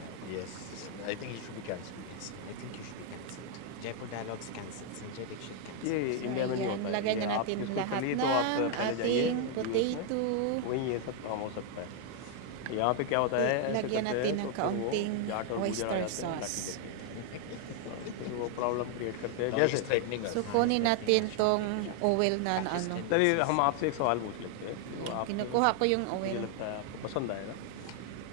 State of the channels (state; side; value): different; both; correlation 0.00